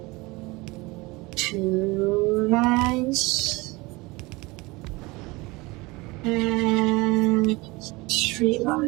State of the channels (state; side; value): quieter; left; 23.4 dB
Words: 2 lines, and 3